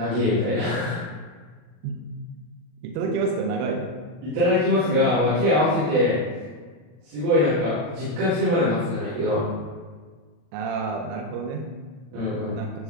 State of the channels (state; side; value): late; left; 40 ms